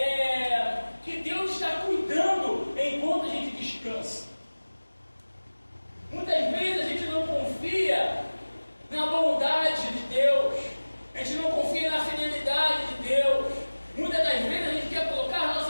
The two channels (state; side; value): inverted; both; correlation -1.00